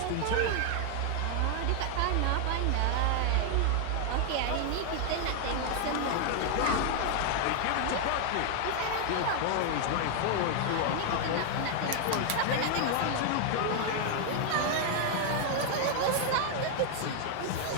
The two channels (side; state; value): both; different; correlation 0.00